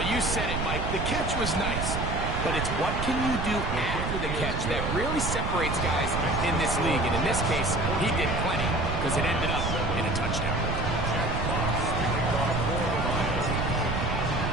you said it, Mike. The catch was nice. But it's what can you do after the catch that really separates guys in this league. And in this case, he did plenty because it ended up in a touchdown.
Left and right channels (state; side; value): noise; right; rumble, 2 dB below the sound